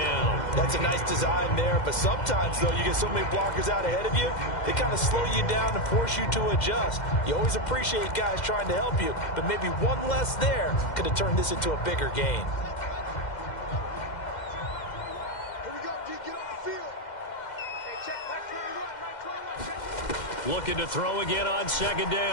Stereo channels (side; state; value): right; late; 2.1 ms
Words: That's a nice design there, but sometimes, though, you get so many blockers out ahead of you, they kind of slow you down and force you to adjust. You always appreciate guys trying to help you, but maybe one less there could have turned this into a bigger gain. Looking to throw again on 2nd